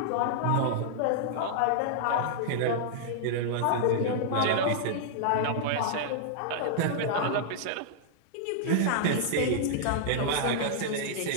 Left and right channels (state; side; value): different; both; correlation -0.01